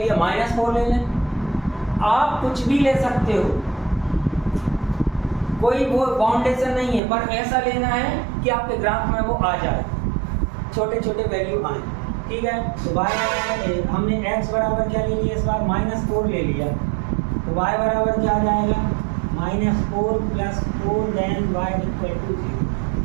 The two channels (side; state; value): left; drops out; at 7.0 s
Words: -4 ले लें। आप कुछ भी ले सकते हो, कोई वो बाउंडेशन नहीं है, पर ऐसा लेना है कि आपके ग्राफ में वो आ जाए, छोटे छोटे वैल्यू आए, ठीक है। तो y हमने x बराबर क्या ले लिया, इस बार -4 ले लिया, तो y बराबर क्या आ जाएगा, -4 plus 4 then y equal to 0,